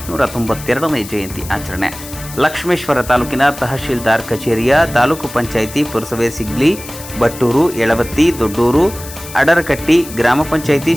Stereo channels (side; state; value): left; noise; hiss, 14 dB below the sound